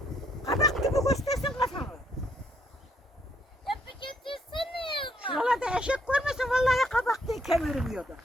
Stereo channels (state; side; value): normal; both; correlation 0.70